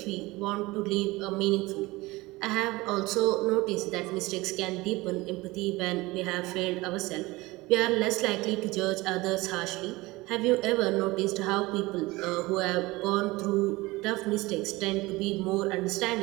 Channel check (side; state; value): left; quieter; 21.2 dB